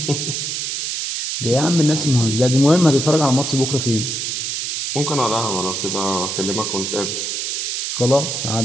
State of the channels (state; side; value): noise; right; hiss, 2 dB below the sound